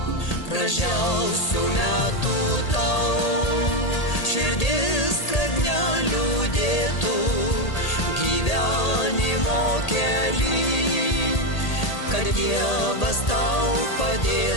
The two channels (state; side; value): late; right; 1.8 ms